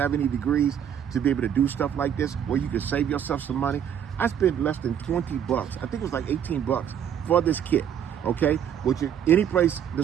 have any degrees to be able to do stuff like this where you can save yourself some money. I spent less than 20 bucks. I think it was like 18 bucks for this kit. Okay, which any place, the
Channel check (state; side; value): quieter; left; 9.0 dB